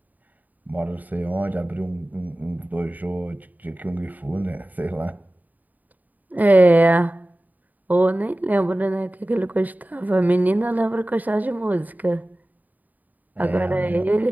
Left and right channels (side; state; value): left; late; 0.082 ms